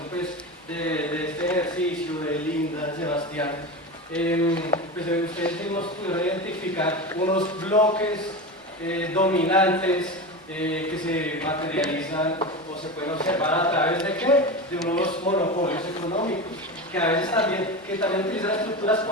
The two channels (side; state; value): both; normal; correlation 0.24